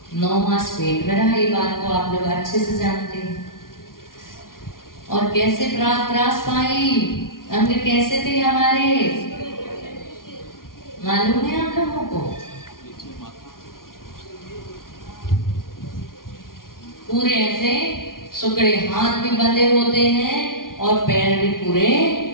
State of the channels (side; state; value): right; late; 0.91 ms